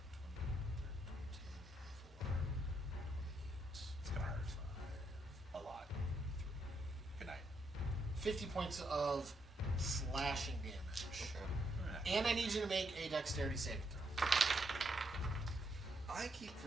It's gonna hurt. A lot. Good night. 50 points of slashing damage. Okay. And I need you to make a dexterity saving throw. I keep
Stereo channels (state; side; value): normal; both; correlation 0.77